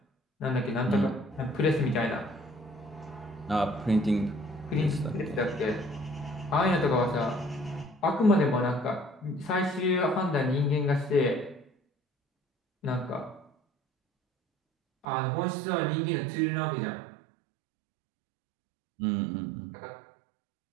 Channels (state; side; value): drops out; left; at 15.1 s